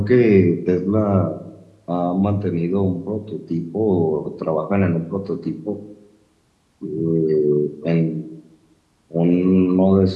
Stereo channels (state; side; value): identical; both; correlation 1.00